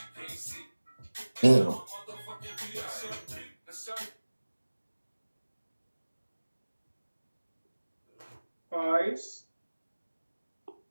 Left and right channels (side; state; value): both; inverted; correlation -1.00